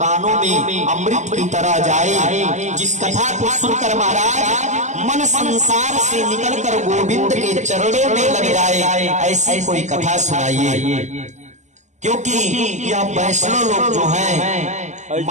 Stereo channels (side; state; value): left; late; 0.34 ms